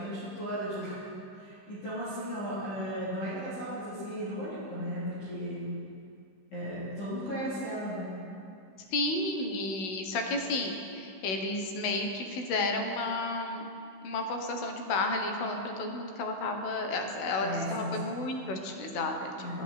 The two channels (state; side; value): late; right; 16 ms